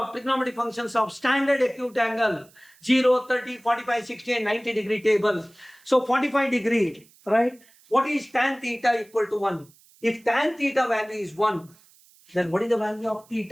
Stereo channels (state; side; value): noise; right; hiss, 29 dB below the sound